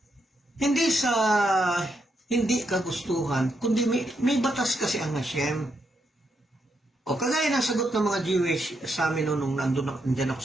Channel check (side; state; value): both; normal; correlation 0.80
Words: hindi sa hindi kagustuhan, kundi may batas kasi ang Hashem. O kagaya ng sagot ng mga Jewish sa amin nung nandyan ako